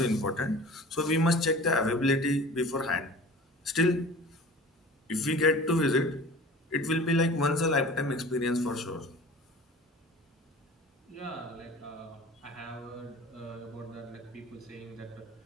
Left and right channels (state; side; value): normal; both; correlation 0.41